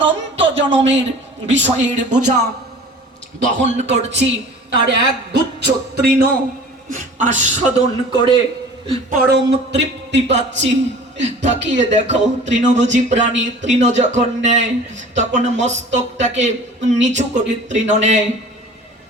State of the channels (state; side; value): normal; both; correlation 0.43